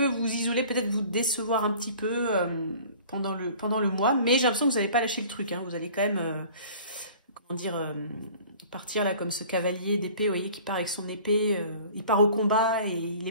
vous isoler, peut-être vous décevoir un petit peu pendant le mois, mais j'ai l'impression que vous n'allez pas lâcher le truc, hein. Vous allez quand même, comment dire... partir là comme ce cavalier d'épée, vous voyez, qui part avec son épée, il part au combat et il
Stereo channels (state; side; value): inverted; both; correlation -0.47